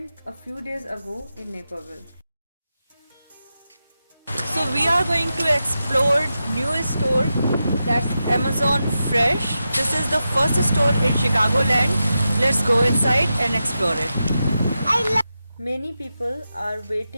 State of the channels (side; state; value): both; inverted; correlation -0.90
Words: a few days ago in Naperville. So we are going to explore new store that's Amazon Fresh. This is the first store in Chicagoland. Let's go inside and explore it. Many people are